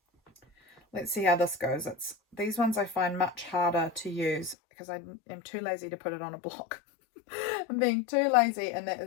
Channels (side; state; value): right; drops out; at 4.5 s